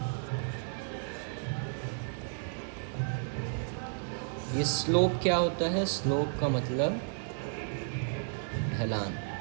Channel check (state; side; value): silent; left; digital silence